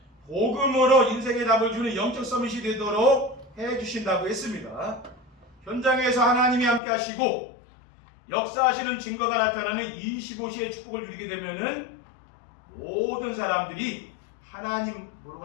복음으로 인생의 답을 주는 영적 서밋이 되도록 해주신다고 했습니다. 현장에서 하나님이 함께 하시고 역사하시는 증거가 나타나는 25시의 축복을 누리게 되면은 모든 사람들이 하나님 모르고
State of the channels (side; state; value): right; drops out; at 6.8 s